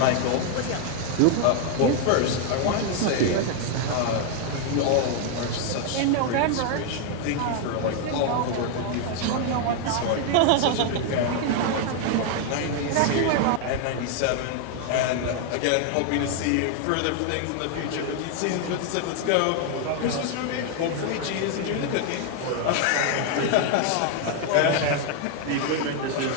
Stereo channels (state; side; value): different; both; correlation 0.00